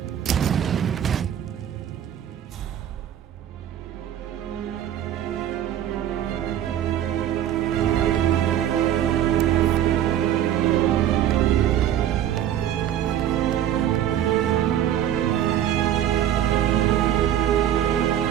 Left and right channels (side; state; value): left; quieter; 10.9 dB